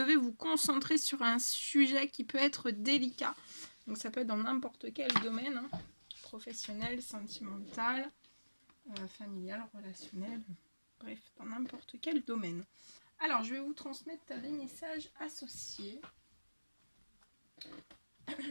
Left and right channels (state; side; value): inverted; both; correlation -1.00